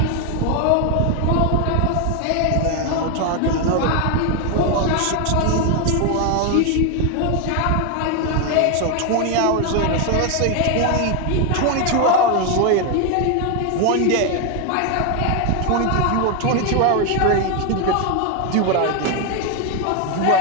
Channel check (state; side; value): different; both; correlation 0.01